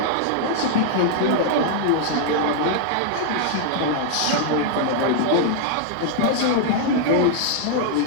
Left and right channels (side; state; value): both; different; correlation -0.01